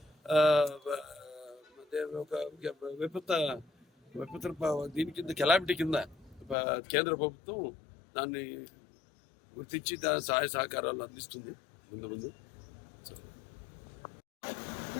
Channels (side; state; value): right; drops out; at 6.6 s